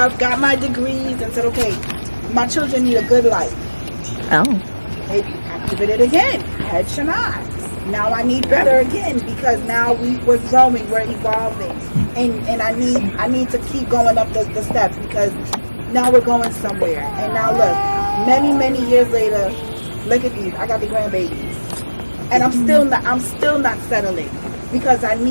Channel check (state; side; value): inverted; both; correlation -1.00